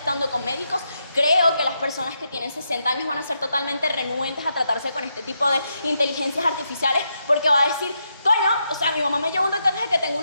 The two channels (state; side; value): inverted; both; correlation -0.82